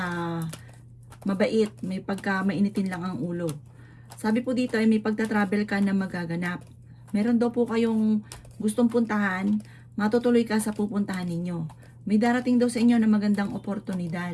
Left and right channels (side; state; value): both; identical; correlation 1.00